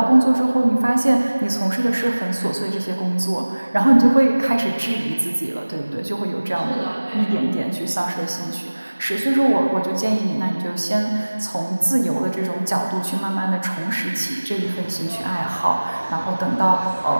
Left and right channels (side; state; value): both; inverted; correlation -1.00